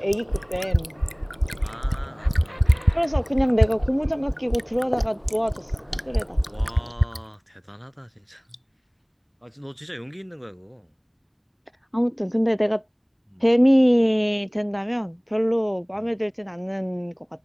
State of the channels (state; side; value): identical; both; correlation 1.00